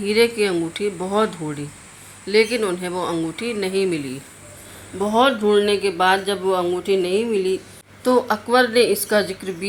की अंगूठी बहुत ढूंढी, लेकिन उन्हें वो अंगूठी नहीं मिली। बहुत ढूंढने के बाद जब वो अंगूठी नहीं मिली तो अकबर ने इसका जिक्र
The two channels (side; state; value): both; identical; correlation 1.00